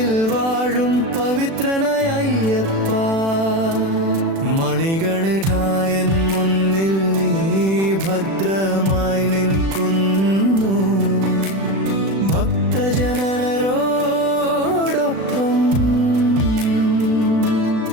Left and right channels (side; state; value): left; late; 36 ms